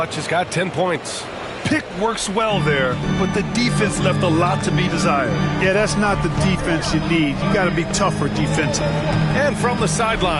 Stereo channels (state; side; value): identical; both; correlation 1.00